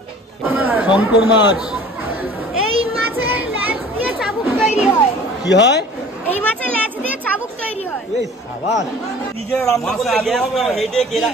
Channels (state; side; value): normal; both; correlation 0.46